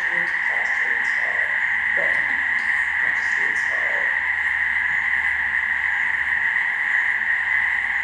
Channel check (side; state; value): both; identical; correlation 1.00